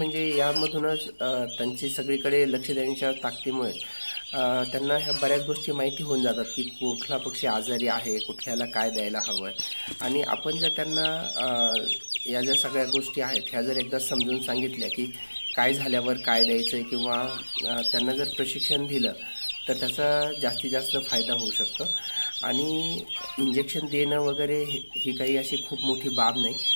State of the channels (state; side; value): inverted; both; correlation -1.00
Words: यामधूनच त्यांची सगळीकडे लक्ष देण्याच्या ताकदीमुळे त्यांना ह्या बऱ्याच गोष्टी माहिती होऊन जातात की कुठला पक्षी आजारी आहे, कुठल्याला काय द्यायला हवं आहे। आणि आपण जर त्यांना या ज्या सगळ्या गोष्टी आहेत ह्या जर एकदा समजून सांगितल्या की काय झाल्यावर काय द्यायचं आहे किंवा त्यांना जर प्रशिक्षण दिलं तर त्याचा जास्तीत जास्त फायदा होऊ शकतो। आणि इंजेक्शन देणं वगैरे ही काही अशी खूप मोठी बाब नाही।